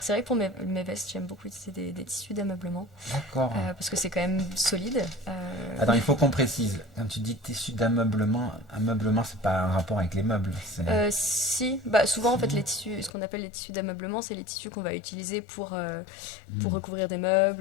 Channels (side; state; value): right; drops out; at 13.1 s